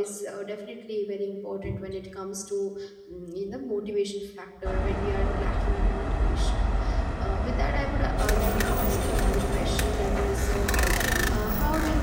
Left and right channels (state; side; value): identical; both; correlation 1.00